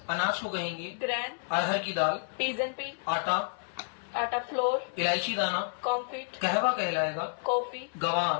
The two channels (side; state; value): right; silent; 58 dB below the other